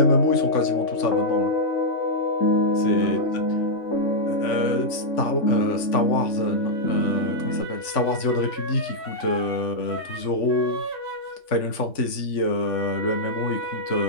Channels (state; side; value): late; right; 3.5 ms